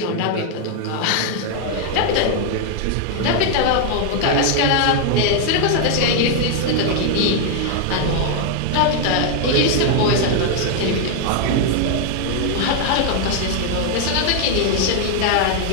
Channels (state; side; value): different; both; correlation 0.00